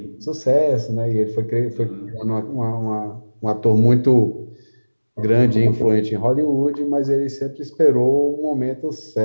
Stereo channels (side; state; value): both; inverted; correlation -1.00